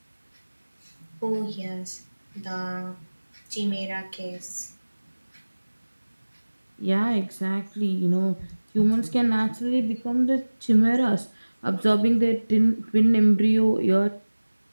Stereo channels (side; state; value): both; inverted; correlation -1.00